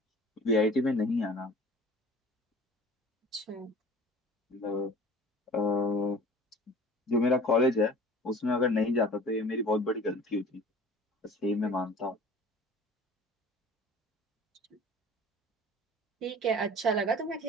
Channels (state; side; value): normal; both; correlation 0.43